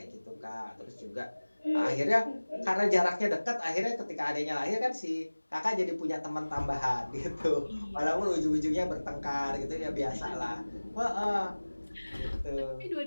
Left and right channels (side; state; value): both; inverted; correlation -1.00